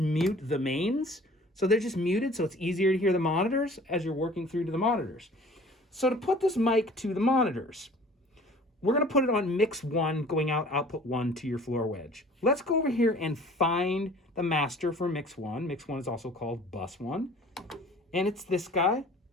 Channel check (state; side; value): normal; both; correlation 0.49